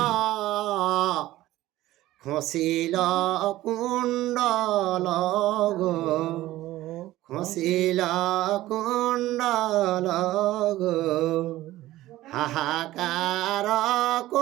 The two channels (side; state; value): left; quieter; 16.0 dB